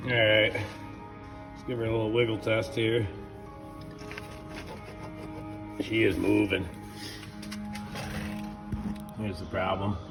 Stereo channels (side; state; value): both; identical; correlation 1.00